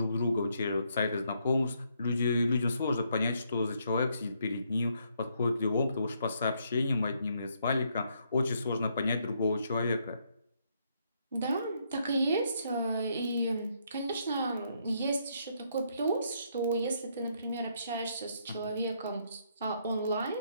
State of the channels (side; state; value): both; inverted; correlation -0.73